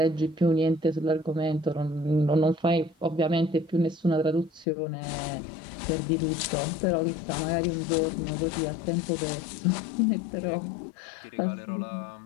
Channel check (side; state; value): right; drops out; at 4.7 s